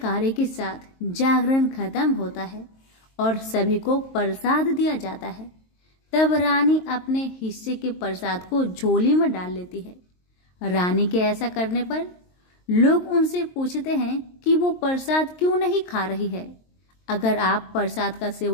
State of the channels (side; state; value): right; late; 22 ms